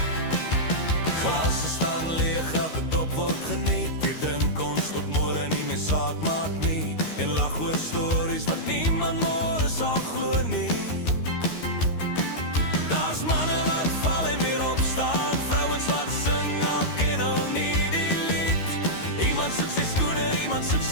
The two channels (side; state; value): right; late; 13 ms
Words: Glasse staan leeg, elke dop word geniet. Wir drink ons tot môre nie meer saak maak nie. En lag oor stories wat niemand môre sal glo nie. Daar's manne wat val en weer opstaan, vrouens wat sing, al ken hulle nie die lied. Iemand soek sy skoene, iemand soek